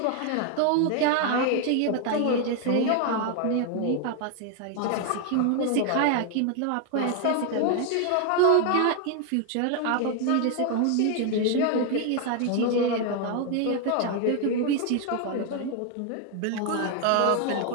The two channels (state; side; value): different; both; correlation 0.01